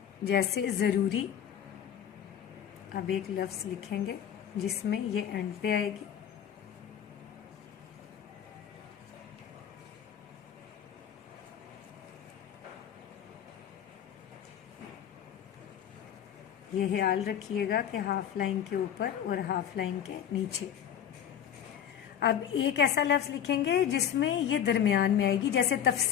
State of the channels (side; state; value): right; quieter; 9.3 dB